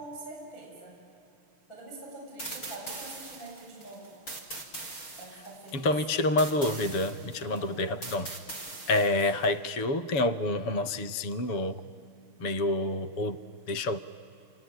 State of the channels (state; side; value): late; right; 6.4 ms